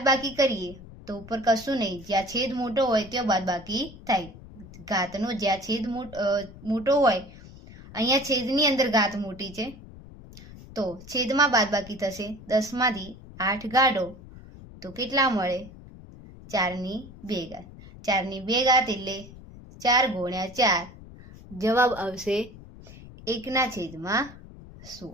કરીએ તો ઉપર કશું નહીં, જ્યાં છેદ મોટો હોય ત્યાં બાદબાકી થાય. ઘાતનો જ્યાં છેદ મોટો હોય, અહીંયા છેદની અંદર ઘાત મોટી છે તો છેદમાં બાદબાકી થશે. 10 માંથી 8 કાઢો તો કેટલા મળે? 4 ની 2 ઘાત. 4 ની 2 ઘાત એટલે 4 ગુણ્યા 4 જવાબ આવશે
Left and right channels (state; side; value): noise; left; rumble, 18 dB below the sound